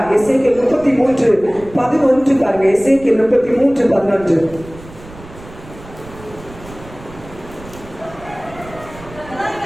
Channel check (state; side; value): noise; right; rumble, 18 dB below the sound